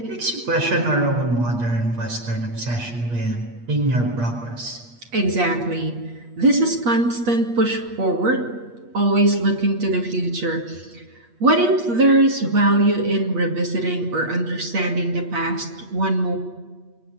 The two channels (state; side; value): late; left; 8.4 ms